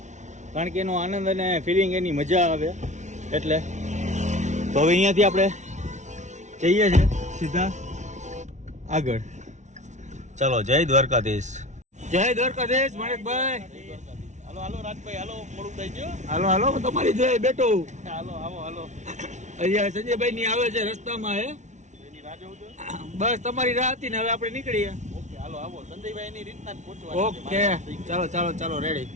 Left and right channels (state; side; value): late; left; 0.34 ms